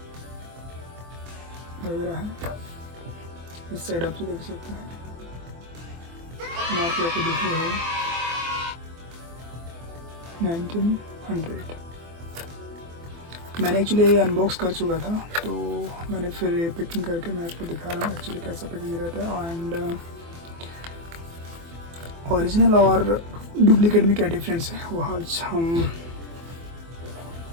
वगैरह है। इस साइड आप देख सकते हैं, मार्क आपको दिख रही है 1900। मैंने एक्चुअली अनबॉक्स कर चुका था, तो मैंने फिर ये पैकिंग करके मैं आपको दिखा रहा हूँ एक्चुअली कैसा पैकिंग रहता है एंड ओरिजिनल और डुप्लीकेट में क्या डिफरेंस है वो आज हम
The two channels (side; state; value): left; late; 24 ms